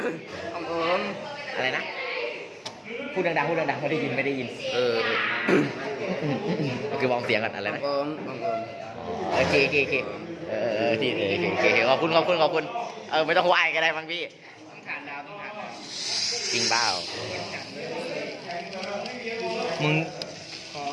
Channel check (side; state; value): both; identical; correlation 1.00